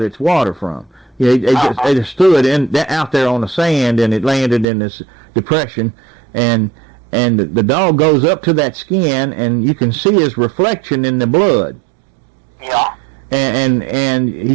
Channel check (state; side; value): drops out; left; at 4.7 s